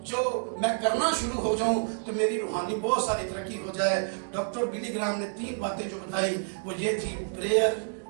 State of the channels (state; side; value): silent; left; digital silence